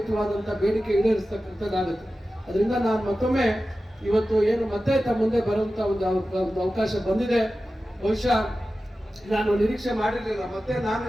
ಬೇಡಿಕೆ ಈಡೇರಿಸ್ತಕ್ಕಂಥದ್ದಾಗುತ್ತೆ. ಅದರಿಂದ ನಾನು ಮತ್ತೊಮ್ಮೆ ಇವತ್ತು ಏನು ಮತ್ತೆ ತಮ್ಮ ಮುಂದೆ ಬರುವಂತ ಒಂದು ಅವಕಾಶ ಬಂದಿದೆ. ಬಹುಶಃ ನಾನು ನಿರೀಕ್ಷೆ ಮಾಡಿರಲಿಲ್ಲ ಮತ್ತೆ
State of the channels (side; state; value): both; normal; correlation 0.94